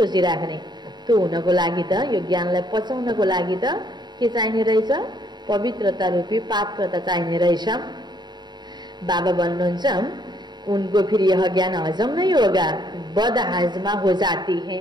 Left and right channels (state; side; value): late; left; 0.21 ms